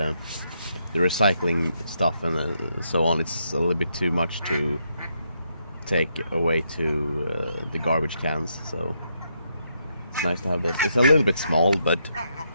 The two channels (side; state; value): both; inverted; correlation -0.78